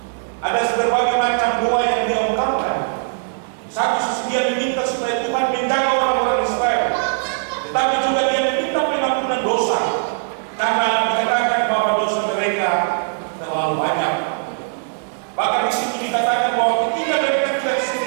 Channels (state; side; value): silent; left; digital silence